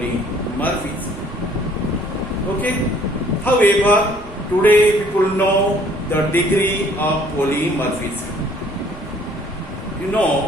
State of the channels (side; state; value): both; normal; correlation 0.58